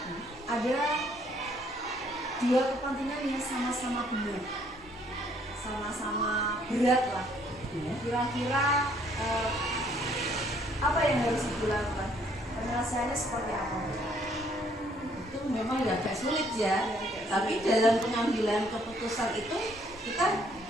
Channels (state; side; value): normal; both; correlation 0.65